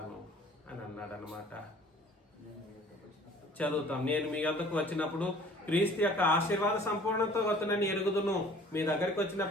అని అన్నాడు అన్నమాట. చదువుతాం. నేను మీ వద్దకు వచ్చినప్పుడు క్రీస్తు యొక్క ఆశీర్వాద సంపూర్ణంతో వస్తానని ఎరుగుదును. మీ దగ్గరికి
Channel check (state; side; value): normal; both; correlation 0.51